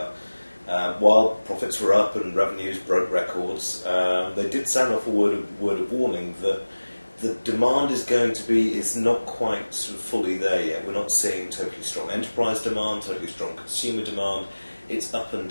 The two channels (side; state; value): both; inverted; correlation -1.00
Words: While profits were up and revenues broke records, they did sound off a word of warning that the demand is not quite sort of fully there yet. We're not seeing totally strong enterprise demand, totally strong consumer demand. It's up and